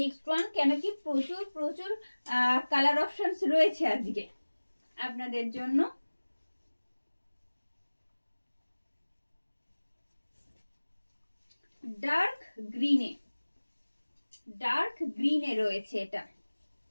one, কেন কি প্রচুর প্রচুর কালার অপশনস রয়েছে আজকে আপনাদের জন্য। ডার্ক গ্রিনে রয়েছে এটা।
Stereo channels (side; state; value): both; inverted; correlation -1.00